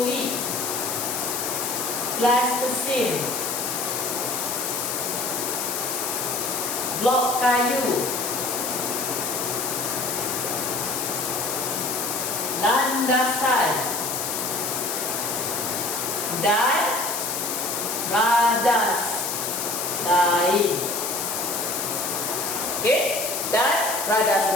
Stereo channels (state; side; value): noise; left; hiss, 2 dB below the sound